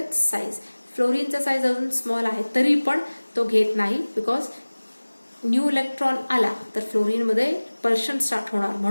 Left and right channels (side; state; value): both; inverted; correlation -1.00